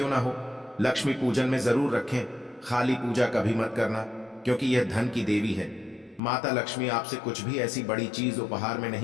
ना हो, लक्ष्मी पूजन में जरूर रखें। खाली पूजा कभी मत करना, क्योंकि यह धन की देवी है। माता लक्ष्मी आपसे कुछ भी ऐसी बड़ी चीज उपहार में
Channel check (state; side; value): drops out; right; at 6.2 s